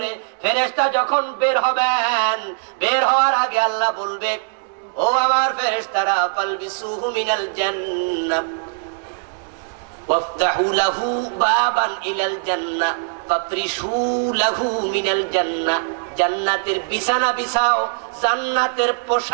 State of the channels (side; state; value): left; silent; digital silence